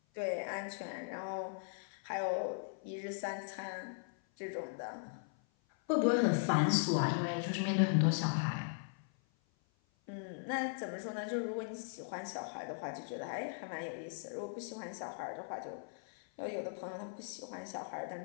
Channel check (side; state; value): right; silent; 52 dB below the other